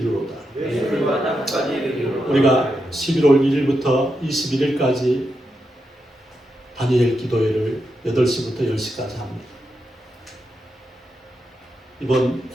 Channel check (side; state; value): both; normal; correlation 0.85